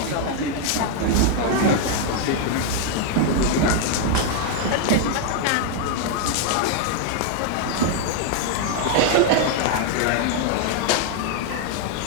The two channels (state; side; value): different; both; correlation 0.00